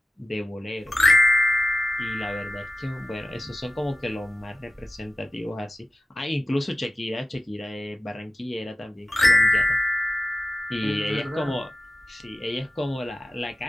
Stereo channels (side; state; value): both; normal; correlation 0.94